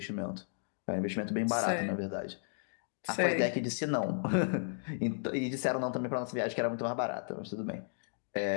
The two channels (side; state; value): right; silent; digital silence